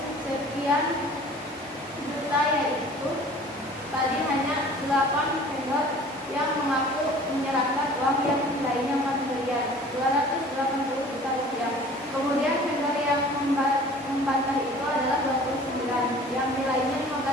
sekian juta, yaitu tadi hanya 8 vendor yang mengaku menyerahkan uang yang nilainya 4 miliar 280 juta rupiah. Kemudian vendor yang membantah itu adalah 29 yang nilainya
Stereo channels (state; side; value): normal; both; correlation 0.46